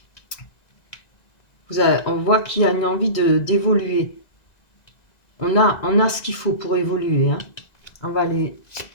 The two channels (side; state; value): right; late; 2.0 ms